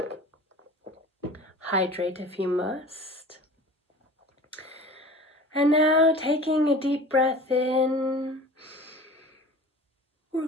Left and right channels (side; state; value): both; normal; correlation 0.41